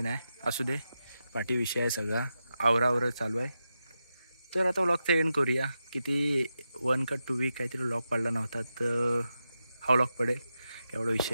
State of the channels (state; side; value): inverted; both; correlation -0.89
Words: नाही. असू दे, पाठी विषय आहे सगळा. आवरावर चालू आहे. तर आता व्लॉगचा एंड करूया. किती 1 का 2 वीक काहीतरी व्लॉग पडला नव्हता, तर हा व्लॉग पडेल, काय एवढा